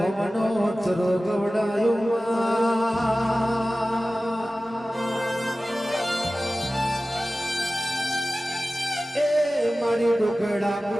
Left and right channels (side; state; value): both; normal; correlation 0.96